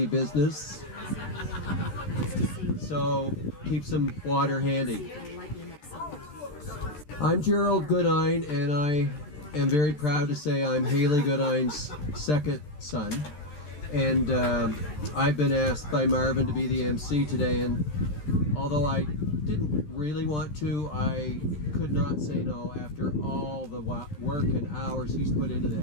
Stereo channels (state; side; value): late; right; 13 ms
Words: business. So keep some water handy. I'm Gerald Goodine, and I am very proud to say I'm Haley Goodine's second son. And I've been asked by Marvin to be the MC today, and although I didn't really want to, I could not say no after all the work and hours he's put into